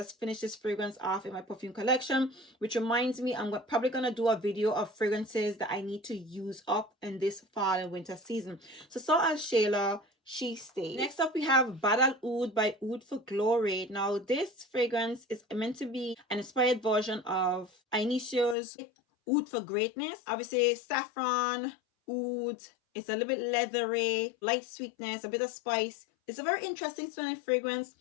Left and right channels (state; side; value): drops out; right; at 18.6 s